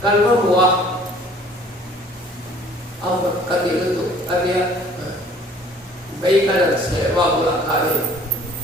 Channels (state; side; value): normal; both; correlation 0.53